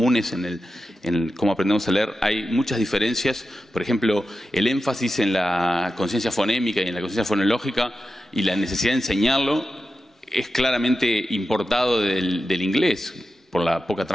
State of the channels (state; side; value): normal; both; correlation 0.91